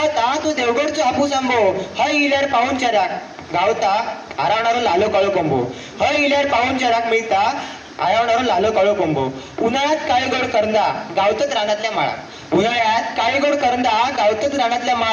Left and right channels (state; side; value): identical; both; correlation 1.00